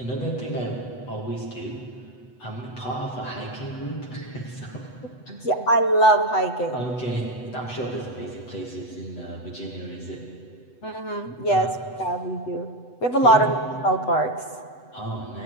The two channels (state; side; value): late; right; 8.0 ms